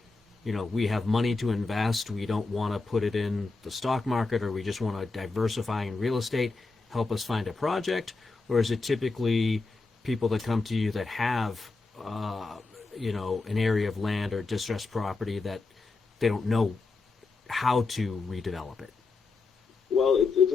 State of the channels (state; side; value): quieter; right; 3.8 dB